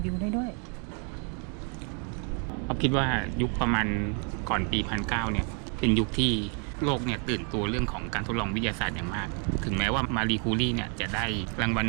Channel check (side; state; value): left; quieter; 38.9 dB